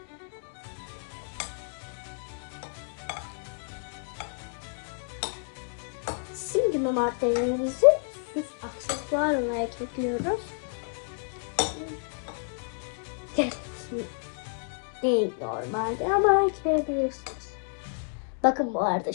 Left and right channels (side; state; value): right; silent; 58 dB below the other